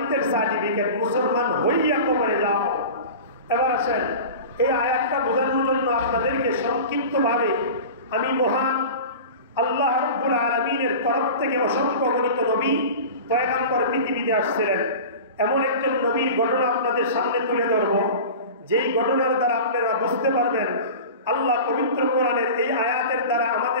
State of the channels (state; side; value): inverted; both; correlation -0.34